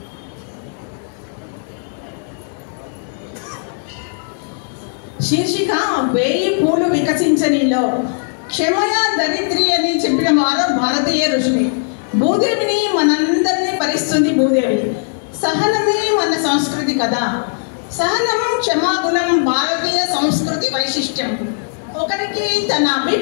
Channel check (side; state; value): right; silent; 66 dB below the other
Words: శీర్షిక 1000 పూలు వికసించనిలో. క్షమయ దరిద్రి అని చెప్పిన వారు భారతీయ ఋషులు. భూదేవిని మనందరినీ పరిస్తుంది భూదేవి. సహనమే మన సంస్కృతి కదా. సహనం, క్షమాగుణం భారతీయ సంస్కృతి వైశిష్ట్యం. ఒకరికి తన